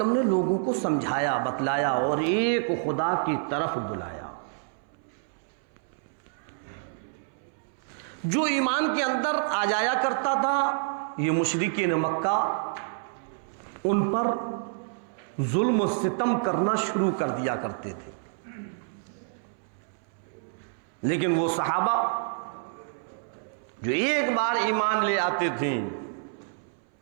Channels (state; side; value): silent; left; 59 dB below the other